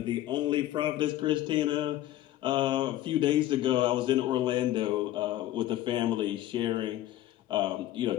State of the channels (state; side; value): quieter; right; 14.2 dB